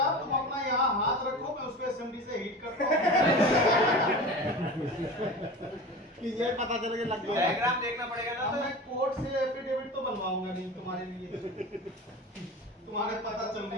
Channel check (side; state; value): both; normal; correlation 0.33